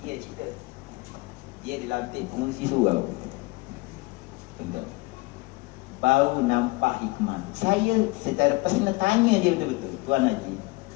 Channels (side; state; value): right; quieter; 23.6 dB